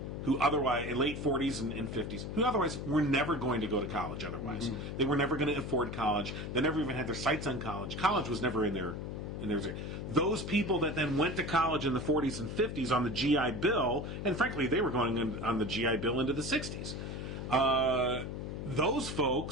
who otherwise, in late 40s and 50s, who otherwise were never going to go to college otherwise. Mm-hmm. They were never going to afford college. They never even had their sights on college. College was never in their... Those people that then went to college in the 40s and 50s on the GI Bill, and frankly, they were going on the GI Bill into the 60s. Those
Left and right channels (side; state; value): left; noise; hum, 6 dB below the sound